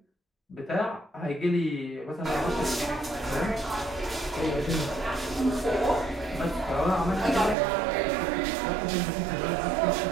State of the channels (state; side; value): drops out; left; at 7.6 s